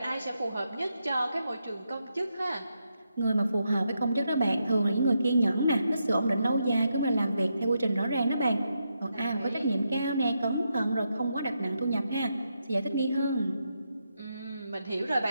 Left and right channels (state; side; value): inverted; both; correlation -0.83